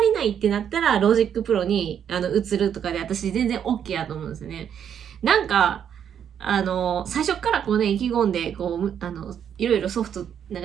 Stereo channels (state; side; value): quieter; left; 8.7 dB